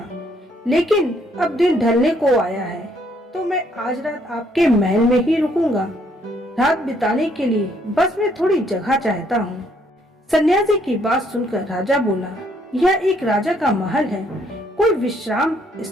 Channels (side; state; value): both; normal; correlation 0.68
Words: लेकिन अब दिन ढलने को आया है तो मैं आज रात आपके महल में ही रुकूंगा। रात बिताने के लिए बस मैं थोड़ी जगह चाहता हूँ। सन्यासी की बात सुनकर राजा बोला, यह एक राजा का महल है, कोई विश्राम